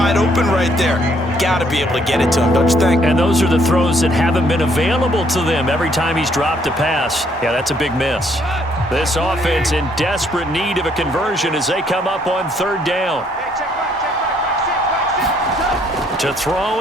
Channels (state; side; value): normal; both; correlation 0.67